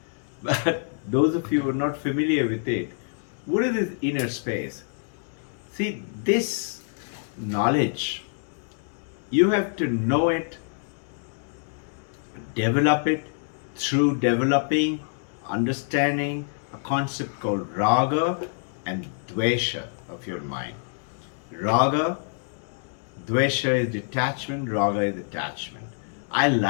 But those of you who are not familiar with it, what is this inner space? See, this knowledge, you have to know it, develop it through developing, understanding a concept called raga and dvesha of your mind. Raga, dvesha is detachment, raga is attachment. I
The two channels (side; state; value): right; silent; 61 dB below the other